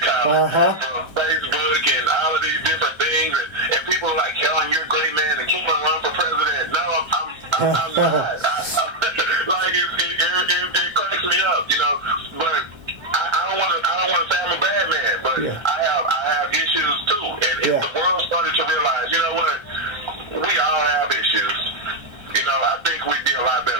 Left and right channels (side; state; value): left; late; 1.3 ms